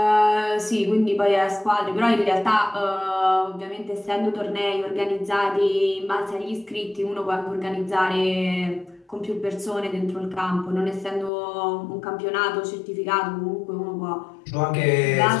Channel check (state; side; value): drops out; right; at 11.3 s